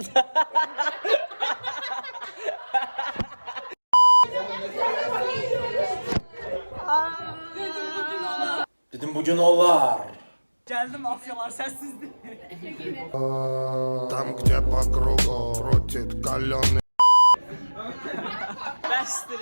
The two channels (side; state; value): both; inverted; correlation -1.00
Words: Dedim bugün olar. Gəldim mafyalar səssizdir. Tam где по кругу крутит каленый.